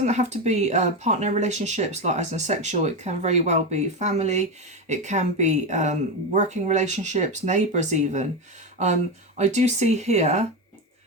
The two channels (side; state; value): both; normal; correlation 0.15